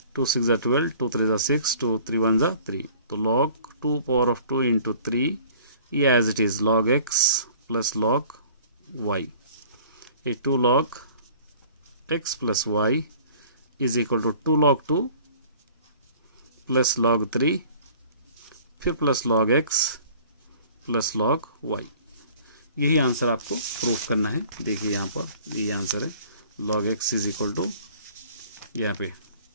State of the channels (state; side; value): inverted; both; correlation -0.50